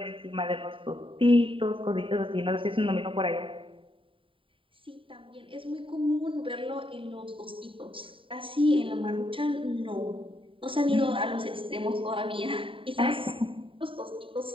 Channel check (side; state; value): left; late; 0.25 ms